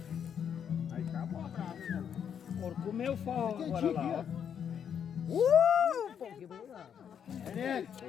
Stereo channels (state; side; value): quieter; right; 8.2 dB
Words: Aí acabou a brasa, né? Por comer o forró agora lá, ó. Pô, que bonito.